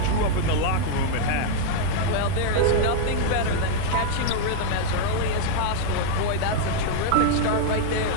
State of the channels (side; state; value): both; different; correlation 0.00